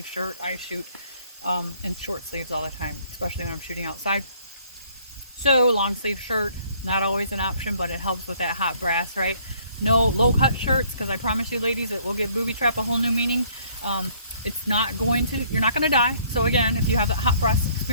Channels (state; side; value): inverted; both; correlation -0.62